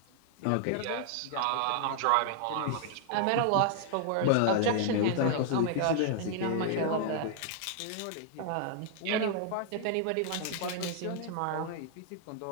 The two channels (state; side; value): different; both; correlation 0.00